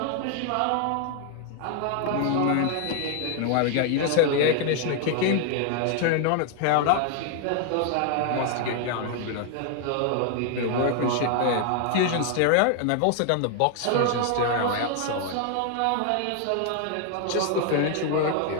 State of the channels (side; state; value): both; different; correlation 0.00